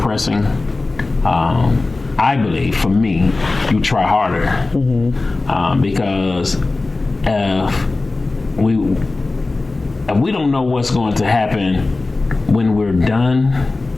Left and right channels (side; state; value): right; quieter; 3.3 dB